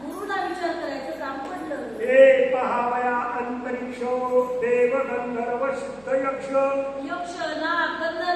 गुरुला विचार करायचं काम पडलं. हे पहावया अंतरिक्ष देव गंधर्व सिद्ध यक्ष यक्ष नाग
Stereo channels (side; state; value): right; noise; hum, 27 dB below the sound